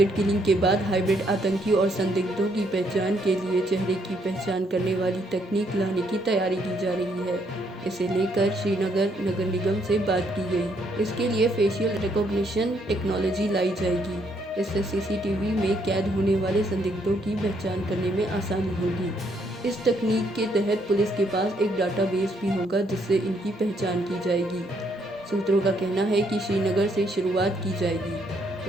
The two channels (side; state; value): both; normal; correlation 0.71